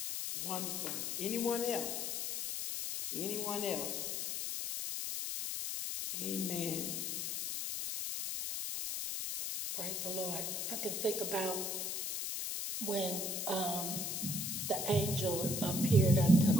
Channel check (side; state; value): left; noise; hiss, 2 dB below the sound